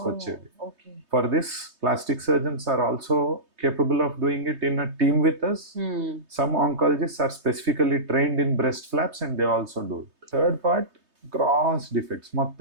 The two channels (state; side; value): late; left; 3.2 ms